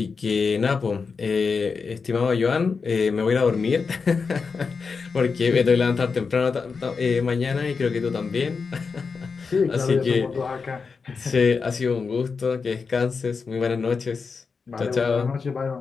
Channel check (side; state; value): right; quieter; 5.1 dB